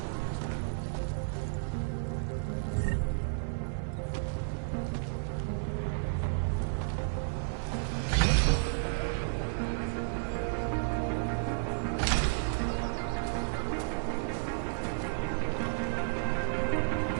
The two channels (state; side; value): silent; left; digital silence